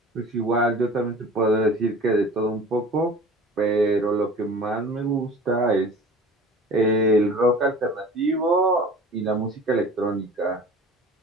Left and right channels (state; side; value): normal; both; correlation 0.41